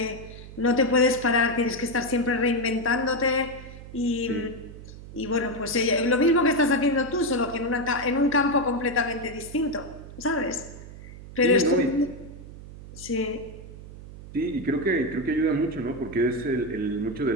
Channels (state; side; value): noise; right; hum, 15 dB below the sound